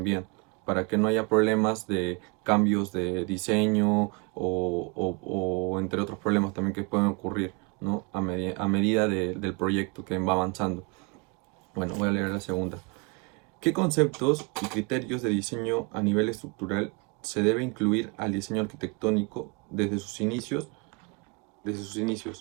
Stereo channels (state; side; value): quieter; left; 30.2 dB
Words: para que no haya problemas de cambios de diseño o entre otros problemas también que pueden ocurrir, ¿no? A medida del proyecto que va avanzando. Bueno, voy a leer la segunda. ¿Qué conceptos y criterios de diseño a nivel estructural se debe incluir al diseño arquitectónico desde sus inicios?